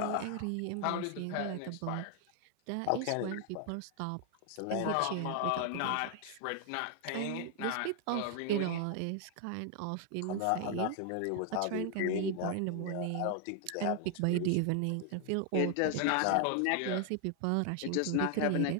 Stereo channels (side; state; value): both; different; correlation 0.00